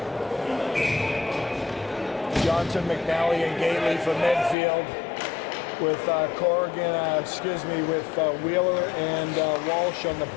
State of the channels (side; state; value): right; drops out; at 4.5 s